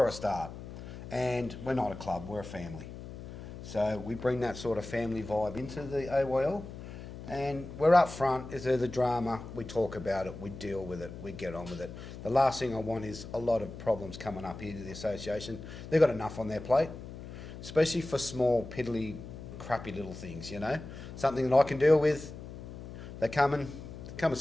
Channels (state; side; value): noise; left; hum, 12 dB below the sound